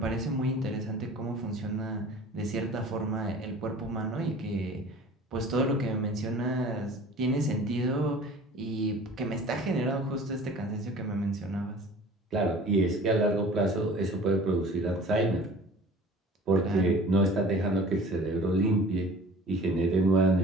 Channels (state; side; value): normal; both; correlation 0.45